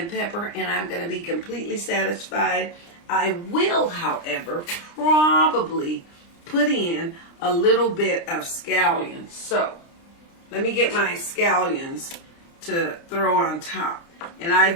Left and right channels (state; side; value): late; right; 29 ms